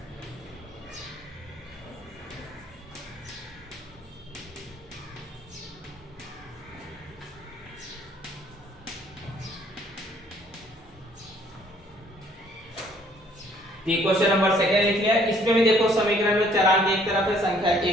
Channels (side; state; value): both; normal; correlation 0.61